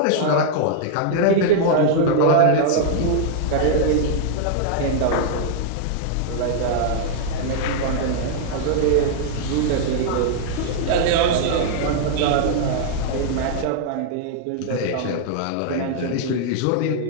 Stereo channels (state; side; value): different; both; correlation -0.01